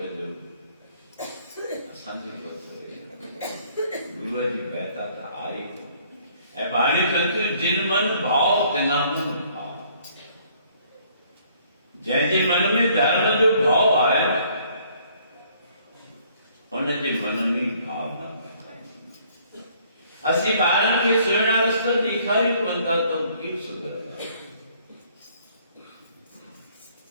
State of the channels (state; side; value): inverted; both; correlation -0.62